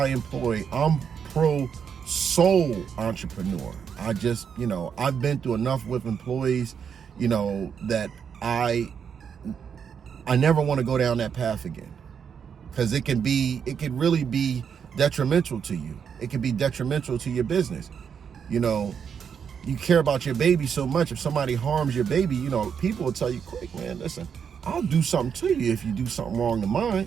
I'm pro-sole entrepreneur. I just, I've been through enough with employees, that I never want to go down that path again. Because it can really be detrimental to you. It can be detrimental to your business. You care about your baby so much. If somebody harms your baby, people will tell you quick, man, listen, I'll do something to you if you do something wrong to mine.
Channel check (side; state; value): left; quieter; 7.2 dB